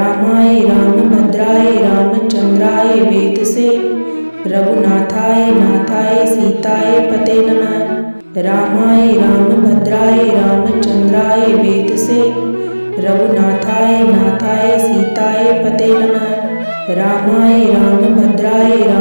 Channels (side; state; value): both; inverted; correlation -1.00